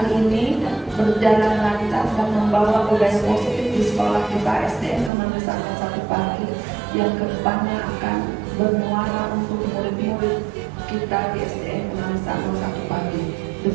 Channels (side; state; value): left; drops out; at 5.1 s